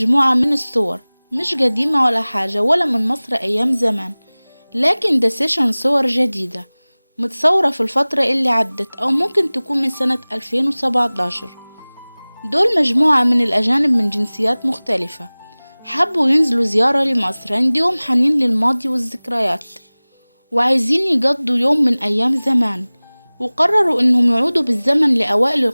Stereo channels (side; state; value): both; inverted; correlation -1.00